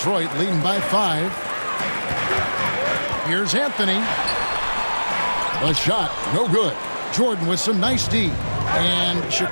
leading by 5. Here's Anthony. A shot, no good. Jordan with some nice D. And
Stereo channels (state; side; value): inverted; both; correlation -1.00